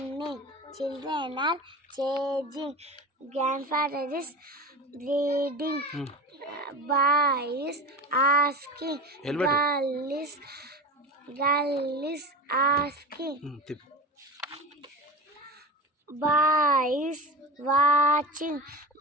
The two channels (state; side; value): normal; both; correlation 0.28